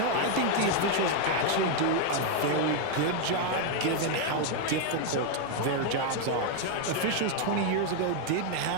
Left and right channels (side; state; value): both; different; correlation 0.01